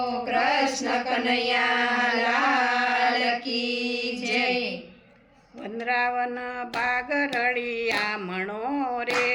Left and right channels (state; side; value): identical; both; correlation 1.00